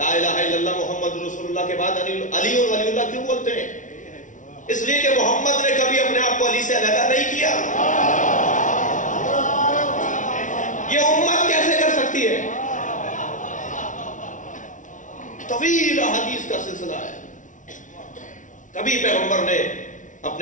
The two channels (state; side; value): late; right; 0.37 ms